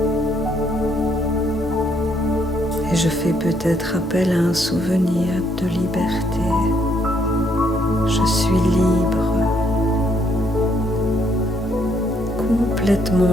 Et je fais peut-être appel à un souvenir de liberté. Je suis libre, complètement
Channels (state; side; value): normal; both; correlation 0.71